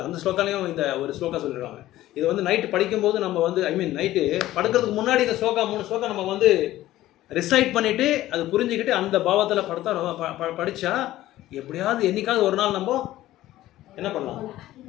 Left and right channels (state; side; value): quieter; right; 15.0 dB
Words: அந்த ஸ்லோகாலையும் இந்த ஒரு ஸ்லோகா சொல்லியிருக்காங்க. இது வந்து நைட்டு படிக்கும்போது நம்ம வந்து நைட்டு படுக்கிறதுக்கு முன்னாடி இந்த ஸ்லோகா 3 ஸ்லோகா நம்ம வந்து ரிசைட் பண்ணிவிட்டு அது புரிஞ்சுக்கிட்டு அந்த பாவத்தில் படித்தா எப்படியாவது என்னைக்காவது ஒரு நாள் நம்ம என்ன பண்ணலாம்,